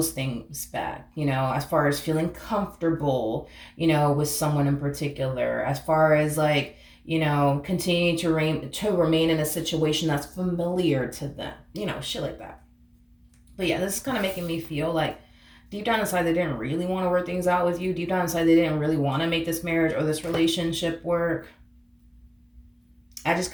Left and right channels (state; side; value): identical; both; correlation 1.00